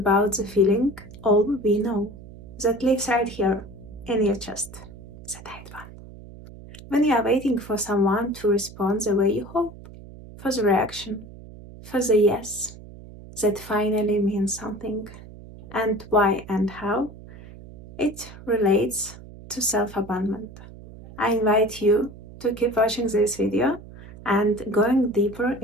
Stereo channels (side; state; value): right; noise; hum, 17 dB below the sound